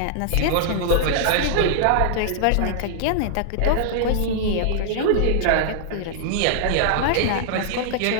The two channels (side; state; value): both; different; correlation -0.01